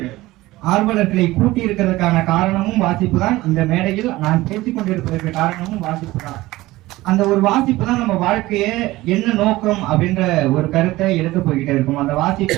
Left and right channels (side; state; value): left; quieter; 18.3 dB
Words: ஆர்வலர்களை கூட்டி இருக்கிறதுக்கான காரணமும் வாசிப்பு தான். இந்த மேடையில் நான் பேசிக் கொண்டிருப்பதற்கு காரணமும் வாசிப்பு தான். அந்த ஒரு வாசிப்பு தான் நம்ம வாழ்க்கையை என்ன நோக்கம் அப்படின்ற ஒரு கருத்தை எடுத்து போய்கிட்டே இருக்கும். அந்த வாசிப்பு